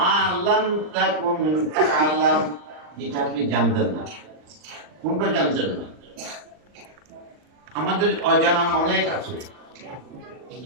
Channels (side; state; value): left; late; 39 ms